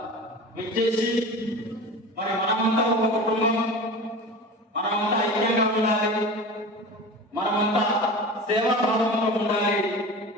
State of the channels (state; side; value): normal; both; correlation 0.33